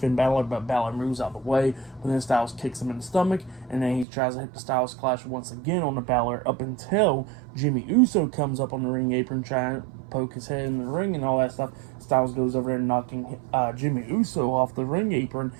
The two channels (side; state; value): left; drops out; at 4.0 s